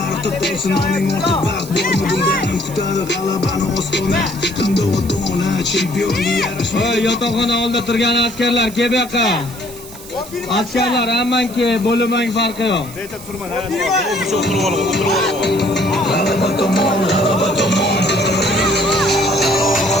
qolsin oning ortda baxt bormi bundanim. Kutadi g'alabani ostona, qanday ota-ona chempionga yarashmaydi. Voy, yotoqxona oldida turgan askarlar, kel bu yoqqa. Askarlar, hammanki bo'limang farqi yo'q. G'alaba tomon, g'alaba tomon.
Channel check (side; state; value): right; noise; hiss, 16 dB below the sound